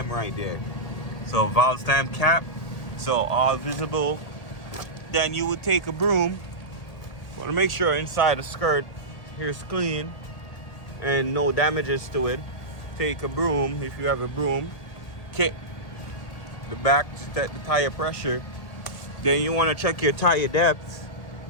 right there. So valve stem cap, so all visible. Then you would take a broom. Want to make sure inside the skirt here's clean and no damages to it. Take a broom, if you have a broom, kick the back to check the tire pressure. Then you want to check your tire depth.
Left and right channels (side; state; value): right; late; 1.8 ms